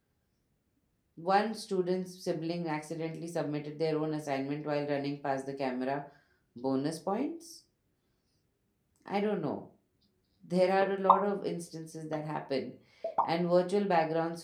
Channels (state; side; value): identical; both; correlation 1.00